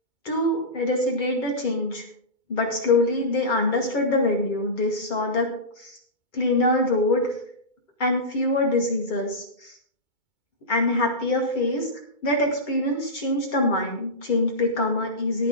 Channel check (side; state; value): right; late; 2.2 ms